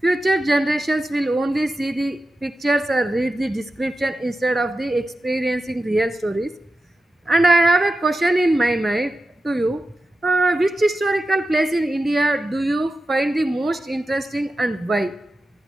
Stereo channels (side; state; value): both; normal; correlation 0.92